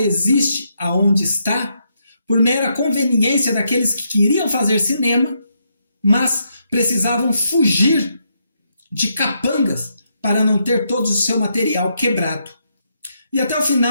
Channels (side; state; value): both; inverted; correlation -0.79